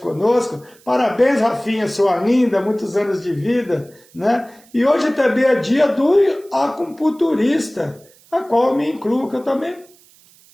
Parabéns, Rafinha, sua linda, muitos anos de vida, né? E hoje também é dia do acupunturista, a qual eu me incluo, que eu também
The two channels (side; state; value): right; noise; hiss, 28 dB below the sound